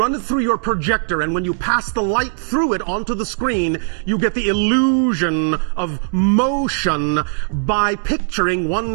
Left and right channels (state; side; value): silent; left; 66 dB below the other